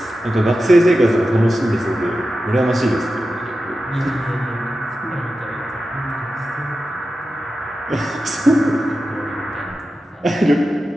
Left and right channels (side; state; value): both; normal; correlation 0.92